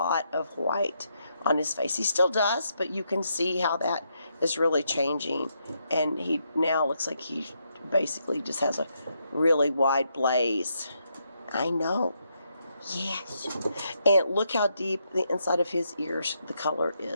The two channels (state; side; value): inverted; both; correlation -0.79